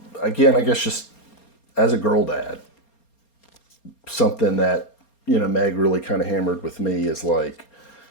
guess just as a girl dad, something that, Meg really kind of hammered with me is like,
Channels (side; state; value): right; late; 4.3 ms